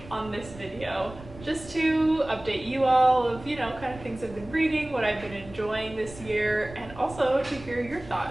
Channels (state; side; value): noise; right; rumble, 17 dB below the sound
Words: on this video just to update you all of, kind of things I've been reading, what I've been enjoying this year, and also to hear your